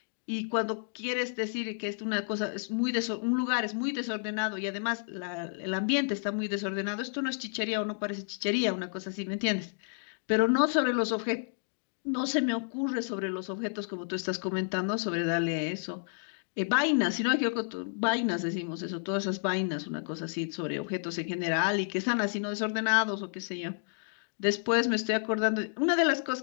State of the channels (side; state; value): right; silent; digital silence